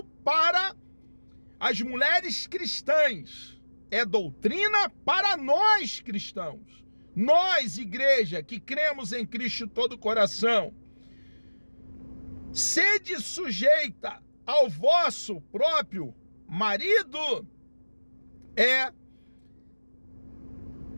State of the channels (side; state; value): both; inverted; correlation -1.00